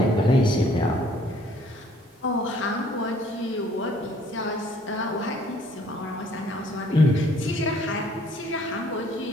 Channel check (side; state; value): both; normal; correlation 0.60